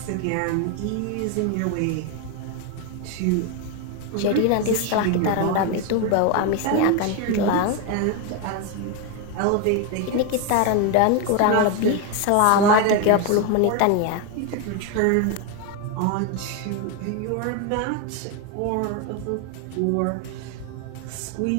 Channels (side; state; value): both; different; correlation 0.02